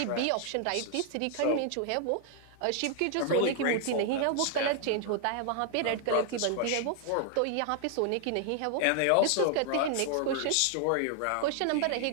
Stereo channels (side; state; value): both; different; correlation 0.00